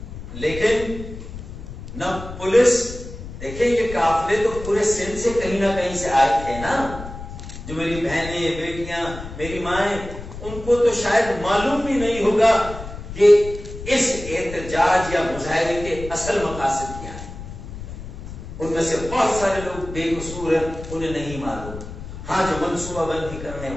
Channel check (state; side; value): noise; left; rumble, 11 dB below the sound